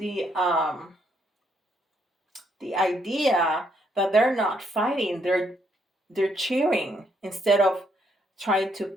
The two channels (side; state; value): both; normal; correlation 0.73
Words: idea that they're not fighting. They're cheering instead of trying to